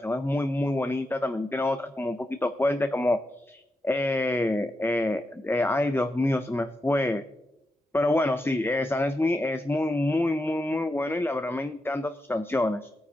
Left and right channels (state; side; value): normal; both; correlation 0.87